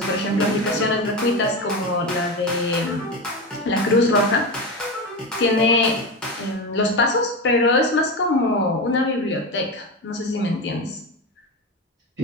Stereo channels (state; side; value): normal; both; correlation 0.19